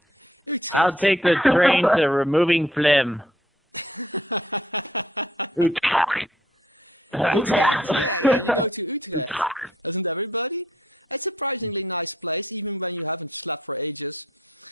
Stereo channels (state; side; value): normal; both; correlation 0.63